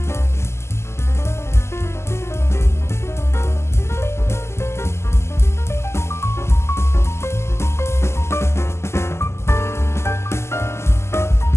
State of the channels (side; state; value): right; late; 0.13 ms